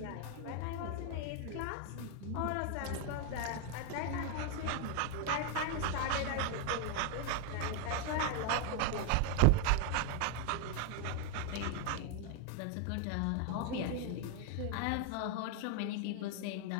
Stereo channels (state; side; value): different; both; correlation 0.01